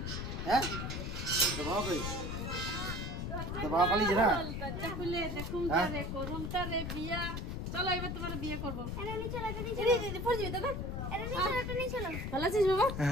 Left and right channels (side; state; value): left; noise; rumble, 3 dB below the sound